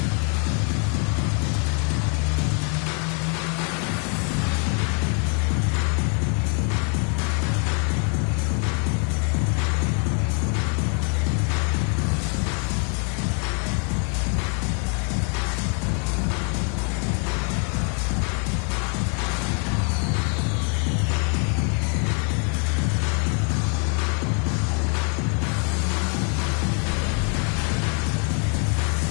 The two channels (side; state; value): right; quieter; 39.1 dB